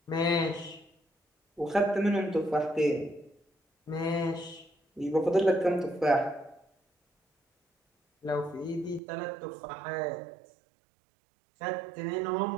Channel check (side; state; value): left; drops out; at 9.0 s